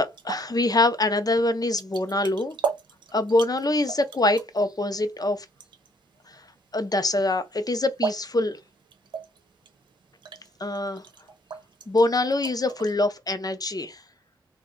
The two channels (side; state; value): both; normal; correlation 0.65